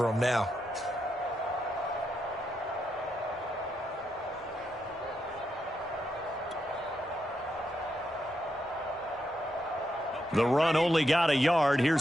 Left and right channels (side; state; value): both; normal; correlation 0.82